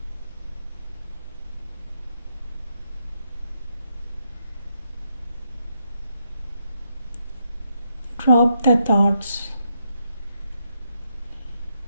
Drop the thoughts,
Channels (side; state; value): both; inverted; correlation -0.79